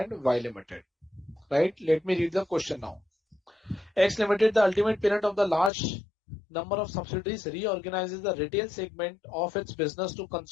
Y Limited. Right? Let me read the question now. X Limited, the ultimate parent of the large number of subsidiaries, reorganizes the retail segment of its business to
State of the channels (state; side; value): drops out; right; at 5.7 s